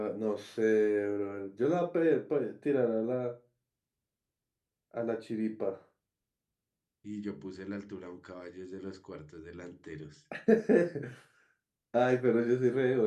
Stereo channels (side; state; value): both; identical; correlation 1.00